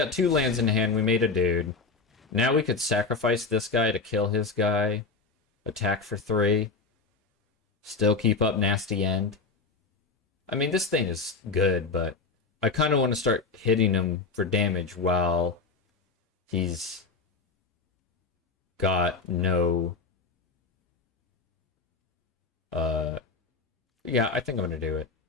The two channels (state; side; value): quieter; right; 4.3 dB